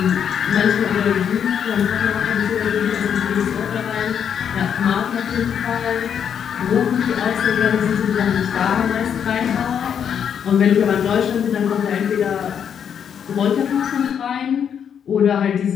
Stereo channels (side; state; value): right; quieter; 8.1 dB